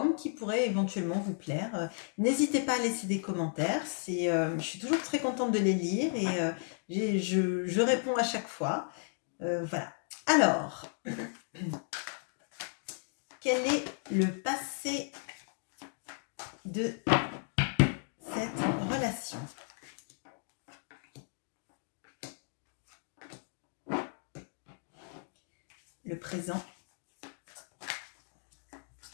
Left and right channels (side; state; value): right; silent; 55 dB below the other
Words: qui pourrait éventuellement vous plaire. N'hésitez pas à laisser des commentaires. Je suis toujours très contente de les lire et je réponds à chaque fois. Voilà. Alors, quel est le passé de cette relation? Le présent.